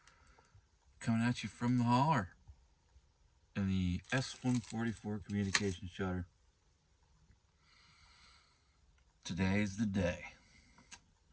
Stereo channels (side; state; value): both; identical; correlation 1.00